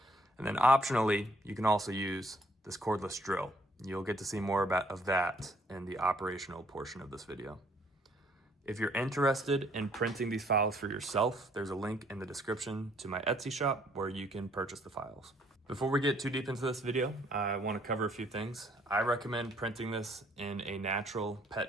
And then optionally, you can also use this cordless drill. You'll get to see more of that in the operational portion of this video. If you're interested in printing these files for yourself, there's a link in the description to my Etsy shop where you can purchase the files. Before we get too deep into this video, I want to cover a few things. I recommend printing this in a natural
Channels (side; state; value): both; normal; correlation 0.64